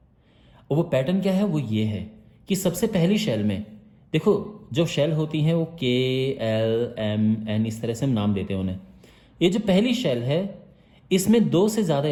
और वो पैटर्न क्या है, वो ये है कि सबसे पहली शेल में देखो जो शेल होती हैं वो KLMN इस तरह से हम नाम देते हैं उन्हें। ये जो पहली शेल है इसमें 2 से ज़्यादा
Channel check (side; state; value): both; identical; correlation 1.00